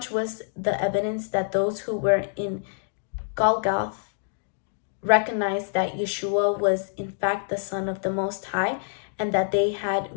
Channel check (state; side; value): silent; right; digital silence